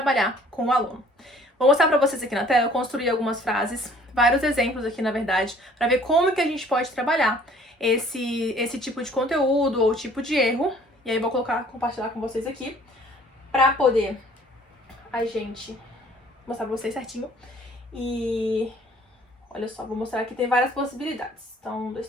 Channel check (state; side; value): normal; both; correlation 0.56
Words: com o aluno. Vou mostrar pra vocês aqui na tela, eu construí algumas frases, vários exemplos aqui na verdade, para ver como que a gente pode trabalhar esse tipo de conteúdo ou tipo de erro. E aí vou compartilhar com vocês aqui, para poder a gente mostrar pra vocês certinho. E olha só, vou mostrar aqui, tem várias possibilidades. Então, 1, 2,